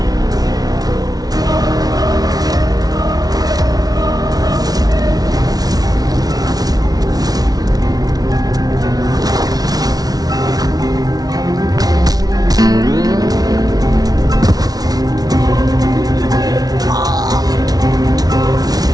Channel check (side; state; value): left; late; 0.19 ms